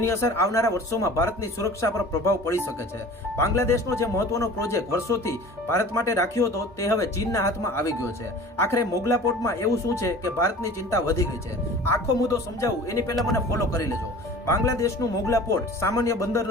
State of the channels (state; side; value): normal; both; correlation 0.42